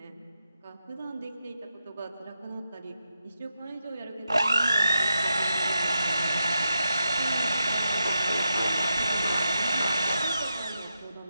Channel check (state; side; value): inverted; both; correlation -0.85